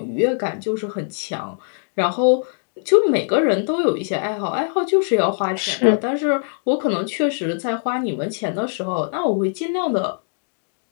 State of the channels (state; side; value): silent; right; digital silence